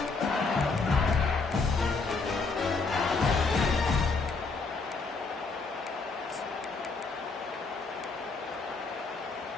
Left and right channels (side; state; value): right; quieter; 4.2 dB